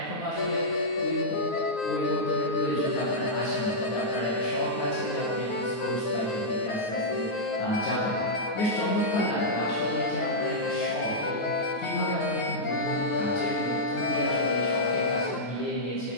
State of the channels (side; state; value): right; late; 9.5 ms